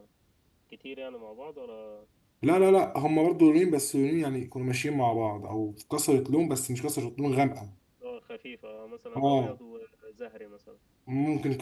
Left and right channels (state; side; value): identical; both; correlation 1.00